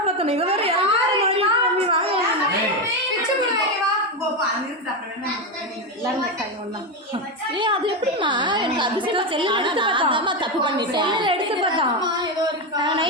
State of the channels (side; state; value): both; normal; correlation 0.11